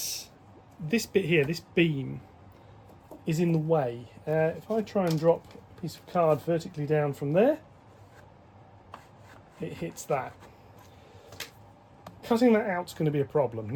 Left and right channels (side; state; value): both; identical; correlation 1.00